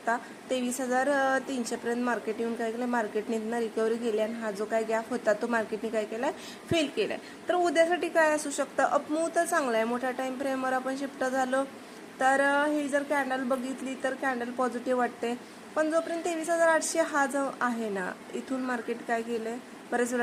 23,300 पर्यंत मार्केट येऊन काय केलं, मार्केटने रिकव्हरी केली आणि हा जो काय गॅप होता तो मार्केटने काय केलाय, फेल केलाय. तर उद्यासाठी काय असू शकतं, अपमूव्ह तर चांगला आहे. मोठ्या टाइम फ्रेमवर आपण शिफ्ट झालो तर ही जर कॅन्डल बघितली तर कॅन्डल पॉझिटिव्ह वाटते. पण जोपर्यंत 23,800 हा जो आहे ना, इथून मार्केट काय केलंय, बरेच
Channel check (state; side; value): identical; both; correlation 1.00